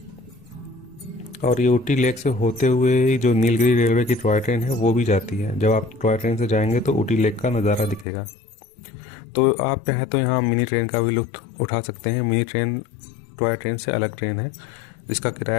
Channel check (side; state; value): right; drops out; at 8.1 s